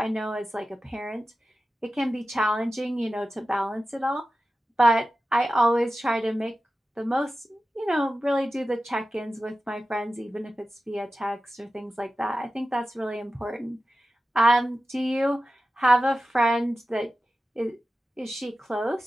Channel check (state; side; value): normal; both; correlation 0.94